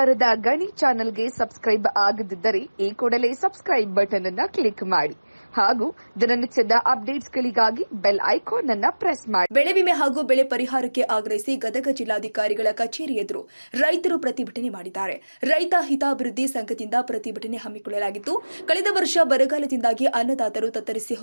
ಗಣಿ ಚಾನೆಲ್ಗೆ ಸಬ್ಸ್ಕ್ರೈಬ್ ಆಗದಿದ್ದರೆ ಈ ಕೂಡಲೇ ಸಬ್ಸ್ಕ್ರೈಬ್ ಬಟನ್ ಅನ್ನು ಕ್ಲಿಕ್ ಮಾಡಿ ಹಾಗೂ ದಿನನಿತ್ಯದ ಅಪ್ಡೇಟ್ಸ್ಗಳಿಗಾಗಿ ಬೆಲ್ ಐಕಾನ್ ಅನ್ನು ಪ್ರೆಸ್ ಮಾಡಿ. ಬೆಳೆ ವಿಮೆ ಹಾಗೂ ಬೆಳೆ ಪರಿಹಾರಕ್ಕೆ ಆಗ್ರಹಿಸಿ ಗದಗ ಜಿಲ್ಲಾಧಿಕಾರಿಗಳ ಕಚೇರಿ ಎದುರು ರೈತರು ಪ್ರತಿಭಟನೆ ಮಾಡಿದ್ದಾರೆ. ರೈತ ಹಿತಾಭಿವೃದ್ಧಿ ಸಂಘದಿಂದ ಪ್ರತಿಭಟನೆ ಹಮ್ಮಿಕೊಳ್ಳಲಾಗಿತ್ತು. ಕಳೆದ ವರ್ಷ ಬರಗಾಲದಿಂದಾಗಿ ಅನ್ನದಾತರು ತತ್ತರಿಸಿ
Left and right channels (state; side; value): inverted; both; correlation -1.00